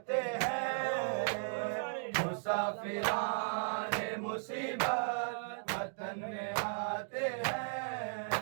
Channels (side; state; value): left; silent; digital silence